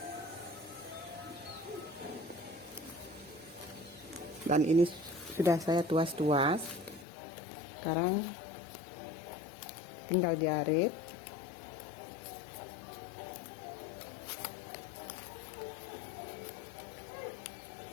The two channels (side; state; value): right; drops out; at 7.1 s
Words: Dan ini sudah saya tuas-tuas. Sekarang tinggal jarit.